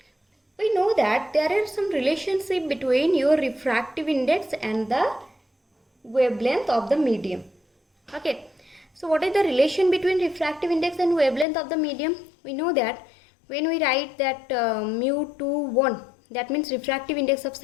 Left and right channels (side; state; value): right; drops out; at 11.5 s